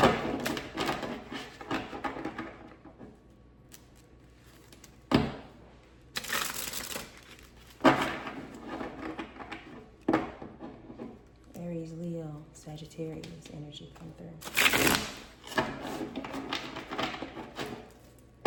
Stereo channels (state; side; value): identical; both; correlation 1.00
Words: Aries, Leo, Sagittarius energy, come through.